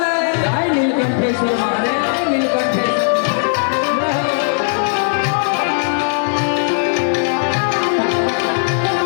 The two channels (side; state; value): right; silent; digital silence